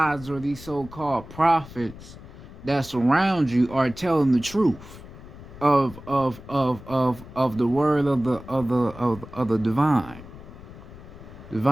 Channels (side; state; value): left; noise; rumble, 16 dB below the sound